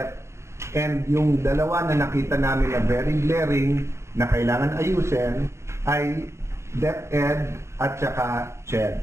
And yung dalawa na nakita namin na very glaring na kailangan ayusin ay DepEd at saka CHED.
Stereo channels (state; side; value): late; left; 0.13 ms